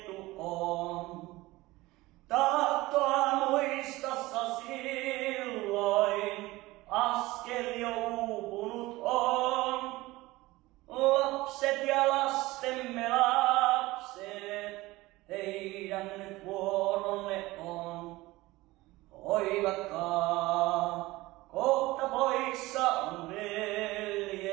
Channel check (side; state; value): left; quieter; 19.6 dB